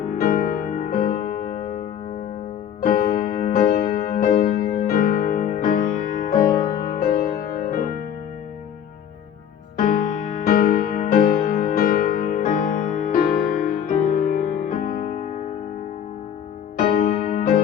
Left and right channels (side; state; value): right; quieter; 9.1 dB